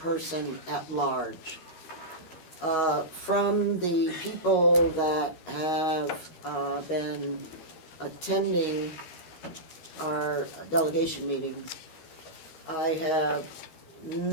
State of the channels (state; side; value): late; right; 13 ms